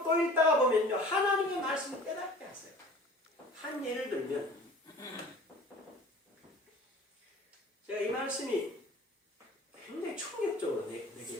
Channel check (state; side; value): normal; both; correlation 0.45